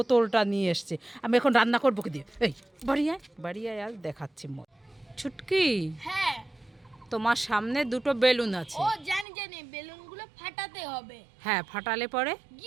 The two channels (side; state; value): left; drops out; at 9.2 s